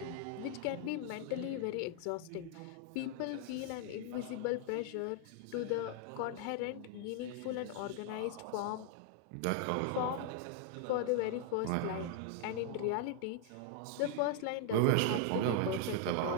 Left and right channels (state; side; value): different; both; correlation 0.00